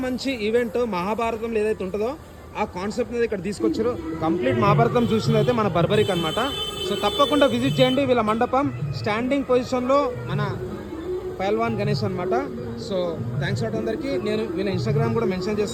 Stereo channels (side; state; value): both; identical; correlation 1.00